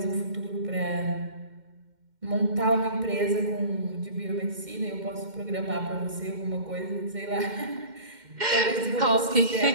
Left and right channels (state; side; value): late; left; 2.1 ms